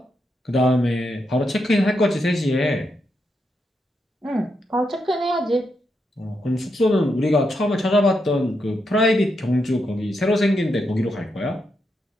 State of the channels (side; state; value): both; normal; correlation 0.83